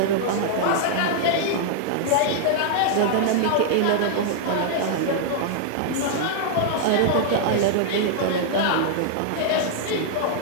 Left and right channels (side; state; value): both; different; correlation -0.01